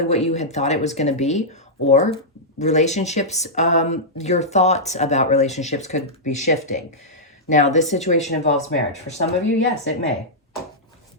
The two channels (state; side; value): normal; both; correlation -0.11